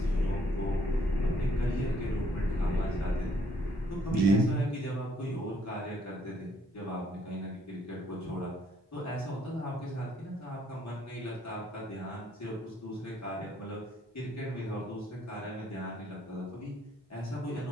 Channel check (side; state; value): both; normal; correlation 0.68